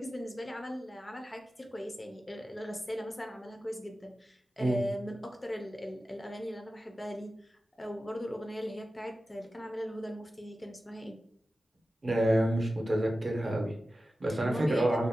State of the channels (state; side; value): normal; both; correlation 0.94